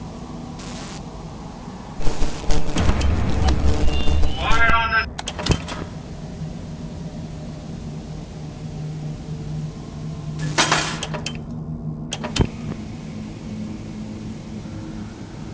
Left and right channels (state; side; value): identical; both; correlation 1.00